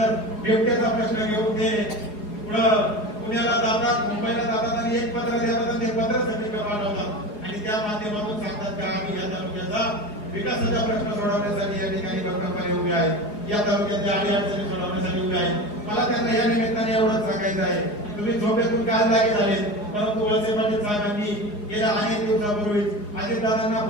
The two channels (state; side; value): late; right; 4.8 ms